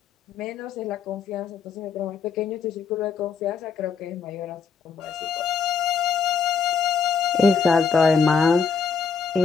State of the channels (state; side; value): quieter; right; 5.8 dB